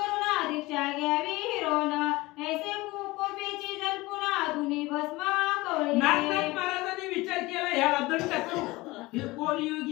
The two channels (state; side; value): quieter; right; 21.0 dB